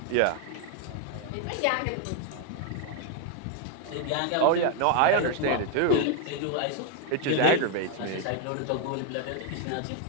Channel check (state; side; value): different; both; correlation 0.01